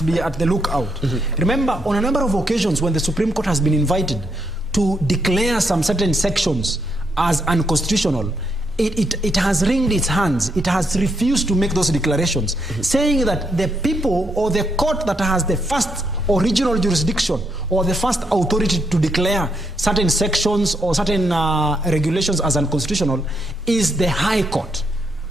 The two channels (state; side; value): normal; both; correlation 0.77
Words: be at the lookout. Remember, on a number of occasions when the Supreme Court has been invited to declare some certain sections as unconstitutional, it has wringed its hands. It has refused to make those declarations, saying that the people or the court that has the first original jurisdiction or the first authority to declare certain sections or certain regulations as unconstitutional is the High Court.